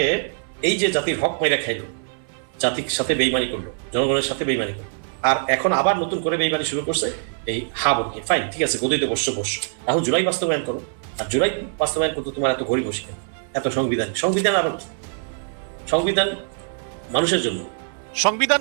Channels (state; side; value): silent; left; 57 dB below the other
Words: এই যে জাতির হক মেরে খাইলো, জাতির সাথে বেইমানি করলো, জনগণের সাথে বেইমানি করলো, আর এখন আবার নতুন করে বেইমানি শুরু করছে এই বলতে। ফাইন, ঠিক আছে, গদিতে বসছো। এখন জুলাই বাস্তবায়ন করো। আর জুলাই বাস্তবায়ন করতে তোমার এত ঘড়ি বসে কেন? এত সংবিধান আর সংবিধান মানুষের জন্য। সংবিধান